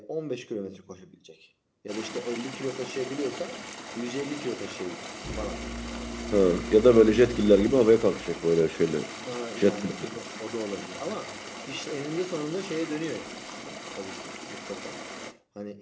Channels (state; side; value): identical; both; correlation 1.00